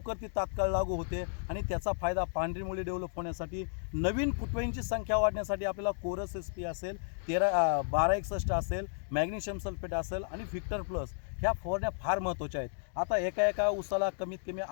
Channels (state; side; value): silent; right; digital silence